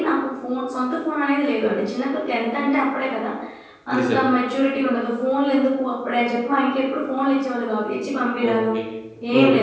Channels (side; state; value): both; identical; correlation 1.00